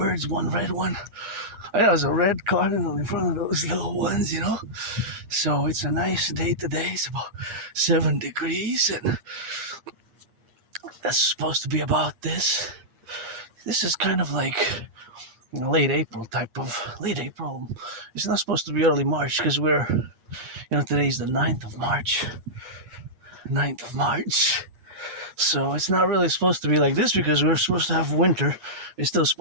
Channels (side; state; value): left; late; 8.4 ms